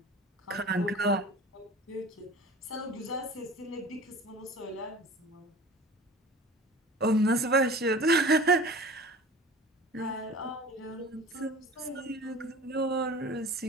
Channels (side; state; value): both; normal; correlation 0.40